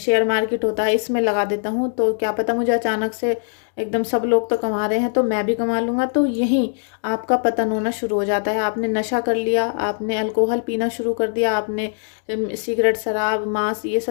मार्केट होता है इसमें लगा देता हूँ, तो क्या पता मुझे अचानक से एकदम सब लोग तो कमा रहे हैं तो मैं भी कमा लूँगा, तो यहीं आपका पतन होना शुरू हो जाता है। आपने नशा कर लिया, आपने अल्कोहल पीना शुरू कर दिया, आपने सिगरेट, शराब, मांस, ये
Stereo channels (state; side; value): silent; right; digital silence